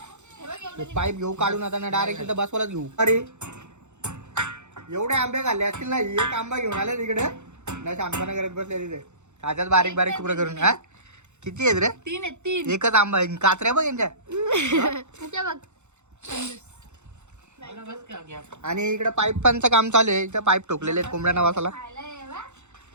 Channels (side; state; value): left; late; 0.83 ms